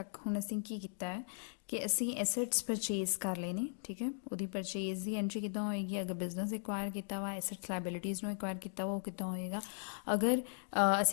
ਹੁਣ ਅਸੀਂ ਕੀ ਕੀਤਾ ਹੈ ਕਿ ਅਸੀਂ ਐਸੈਟਸ ਪਰਚੇਜ਼ ਕਰ ਲਏ ਨੇ, ਠੀਕ ਹੈ। ਉਹਦੀ ਪਰਚੇਜ਼ ਦੀ ਐਂਟਰੀ ਕਿੱਦਾਂ ਹੋਏਗੀ, ਅਗਰ ਬਿਜ਼ਨਸ ਐਕਵਾਇਰ ਕੀਤਾ ਵਾ, ਐਸੈਟਸ ਲਾਇਬਿਲਿਟੀਜ਼ ਨੂੰ ਐਕਵਾਇਰ ਕੀਤਾ ਵਾ, ਉਹ ਕਿੱਦਾਂ ਹੋਏਗਾ। ਅਗਰ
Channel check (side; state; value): right; silent; digital silence